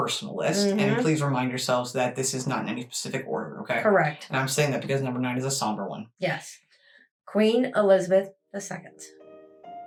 list. And please remind yourselves that this is not in any specific order, okay? Correct. And I'm saying that because number 9 is a somber one. Yes. Queen Elizabeth II.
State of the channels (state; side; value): identical; both; correlation 1.00